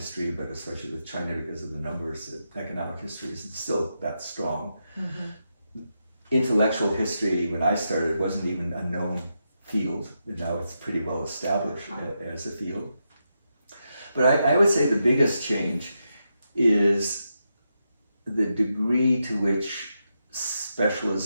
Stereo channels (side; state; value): both; inverted; correlation -0.85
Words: but especially with China because of the numbers, economic history isn't still that strong. Intellectual history, when I started, wasn't even a known field. Now it's pretty well established as a field. But I would say the biggest change is the degree to which